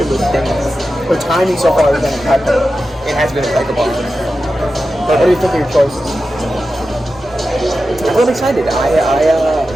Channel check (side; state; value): right; noise; rumble, 27 dB below the sound